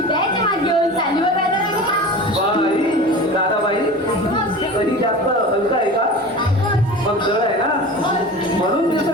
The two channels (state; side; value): normal; both; correlation 0.34